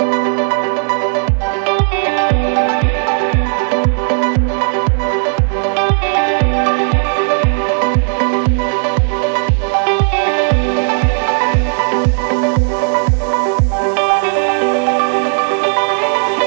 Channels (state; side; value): silent; left; digital silence